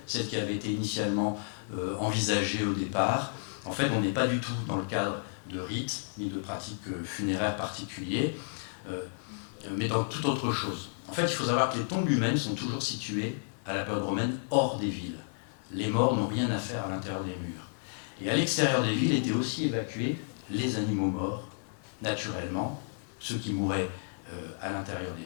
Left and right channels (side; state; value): right; silent; 57 dB below the other